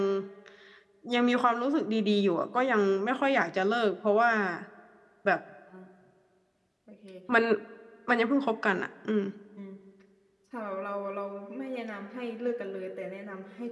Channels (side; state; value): both; identical; correlation 1.00